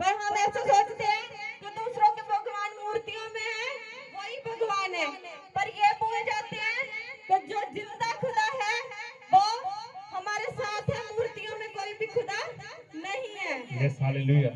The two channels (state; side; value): identical; both; correlation 1.00